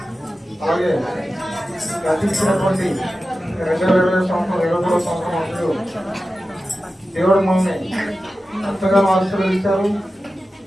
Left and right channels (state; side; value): normal; both; correlation 0.94